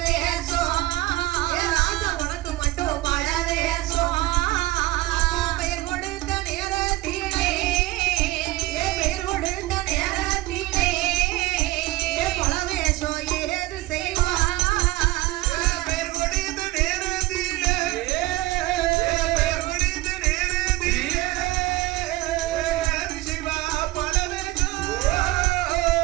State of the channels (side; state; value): left; quieter; 18.6 dB